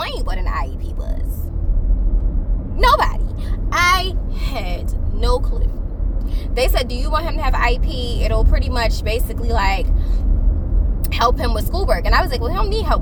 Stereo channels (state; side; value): identical; both; correlation 1.00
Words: what an IEP was. Nobody. I had no clue. They said, do you want him to have IEP? It'll pretty much basically like help him with schoolwork. And I was like, well, he don't need help